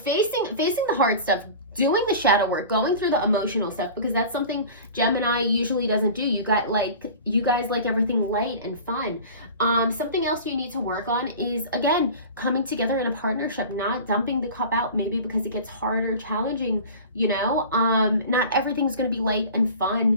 the hard stuff, doing the shadow work, going through the emotional stuff, because that's something Gemini usually doesn't do. You guys like everything light and fun. Something else you need to work on is, again, coming together in a partnership, not dumping the cup out, maybe because it gets harder, challenging, you know. Not everything's going to be light and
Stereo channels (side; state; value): both; inverted; correlation -0.37